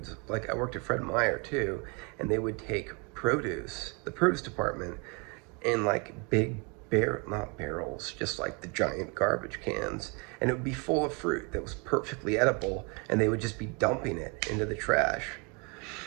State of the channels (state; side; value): quieter; left; 30.7 dB